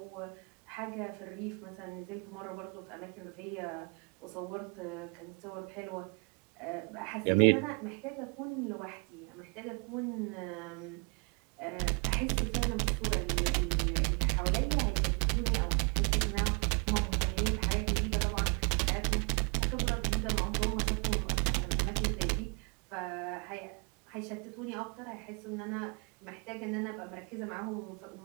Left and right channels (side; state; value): left; quieter; 34.7 dB